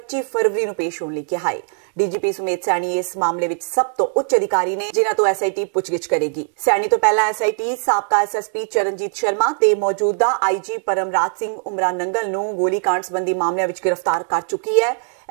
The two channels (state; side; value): silent; left; 66 dB below the other